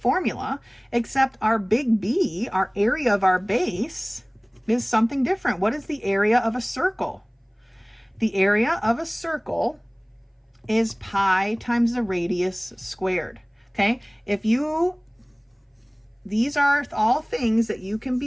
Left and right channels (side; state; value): both; identical; correlation 1.00